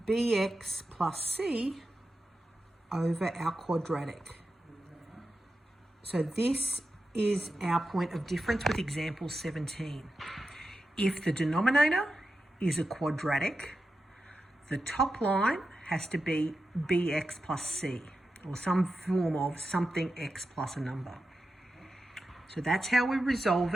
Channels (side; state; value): both; normal; correlation 0.90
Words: bx plus c over our quadratic. So this is our point of difference with example 17. If the denominator is a quadratic, the top line has to be bx plus c, or some form of something x plus a number. So that's how we resolve